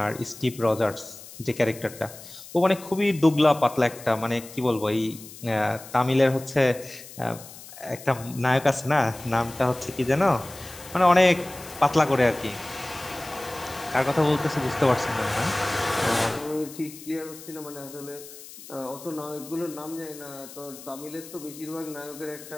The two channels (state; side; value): noise; left; hiss, 16 dB below the sound